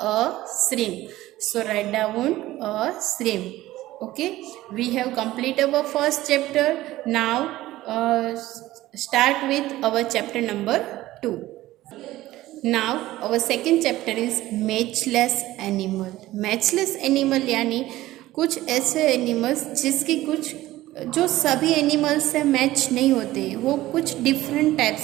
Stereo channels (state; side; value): quieter; left; 16.3 dB